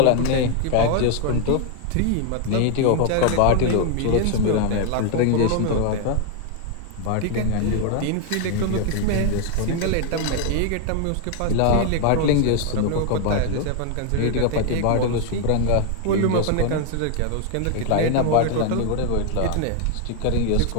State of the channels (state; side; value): different; both; correlation 0.00